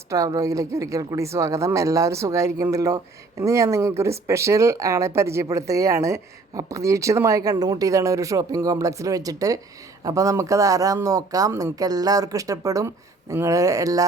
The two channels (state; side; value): quieter; left; 3.6 dB